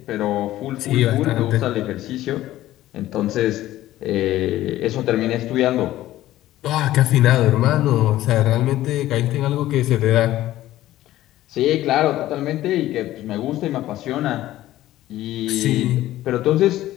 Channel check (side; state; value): right; quieter; 14.7 dB